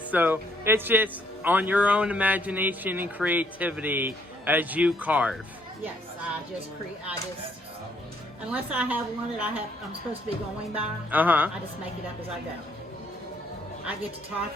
so it's just on your own imagination and creativity as you carve. Yes, unless I have one that I'm supposed to be going by, I just make it up as I go. I get to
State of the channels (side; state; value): both; normal; correlation 0.68